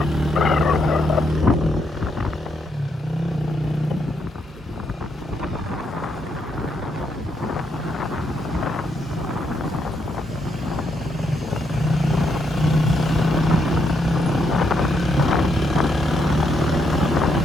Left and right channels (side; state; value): both; normal; correlation 0.77